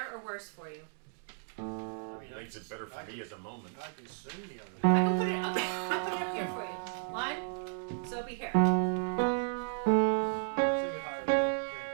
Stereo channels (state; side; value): silent; left; digital silence